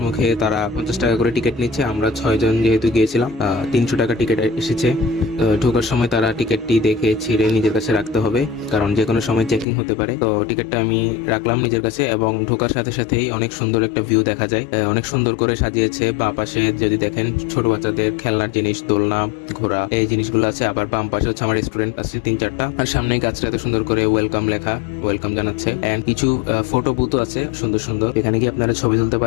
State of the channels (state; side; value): drops out; right; at 9.7 s